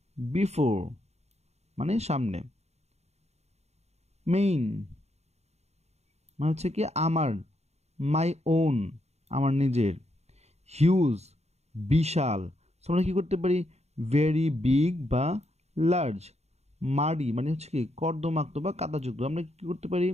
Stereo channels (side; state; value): left; late; 0.31 ms